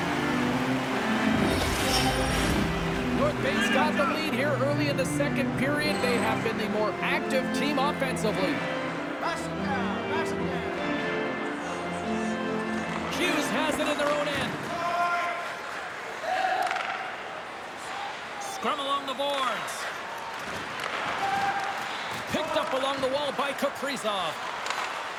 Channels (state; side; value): identical; both; correlation 1.00